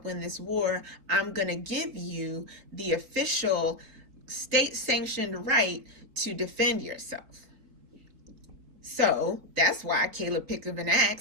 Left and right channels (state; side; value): late; left; 4.2 ms